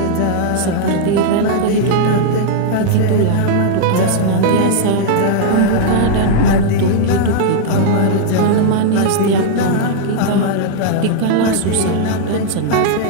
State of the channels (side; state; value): both; different; correlation -0.01